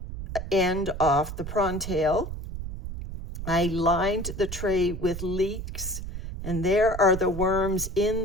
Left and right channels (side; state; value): right; noise; rumble, 8 dB below the sound